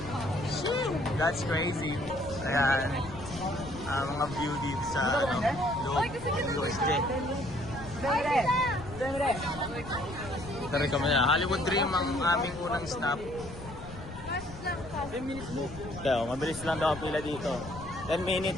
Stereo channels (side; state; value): left; noise; rumble, 13 dB below the sound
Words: That's crazy. Ayan. Mga view dito sa USJ. Ito rin kami na. Hollywood Dream ang aming unang stop. 10 minutes mo. Kaya, mabilis lang daw ang pila dito. 10